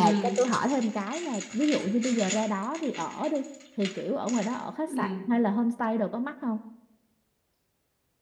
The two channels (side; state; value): both; identical; correlation 1.00